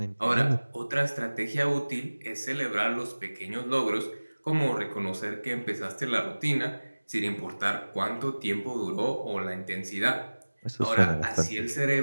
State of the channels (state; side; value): inverted; both; correlation -1.00